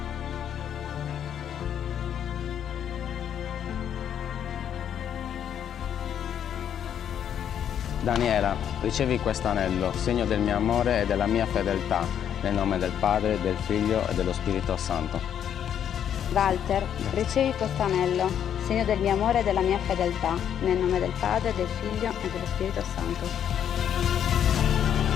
Daniela, ricevi questo anello, segno del mio amore e della mia fedeltà, nel nome del Padre, del Figlio e dello Spirito Santo. Walter, ricevi questo anello, segno del mio amore e della mia fedeltà, nel nome del Padre, del Figlio e dello Spirito Santo.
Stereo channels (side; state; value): right; quieter; 9.3 dB